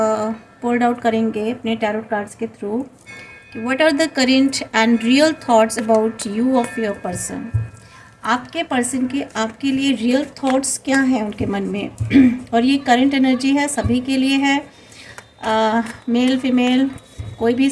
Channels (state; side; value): identical; both; correlation 1.00